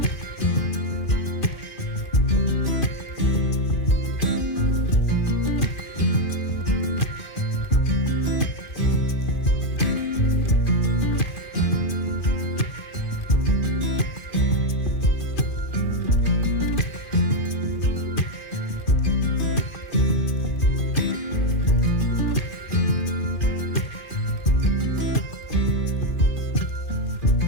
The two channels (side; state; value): right; late; 2.4 ms